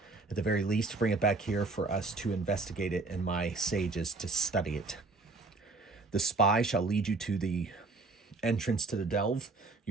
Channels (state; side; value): quieter; left; 3.6 dB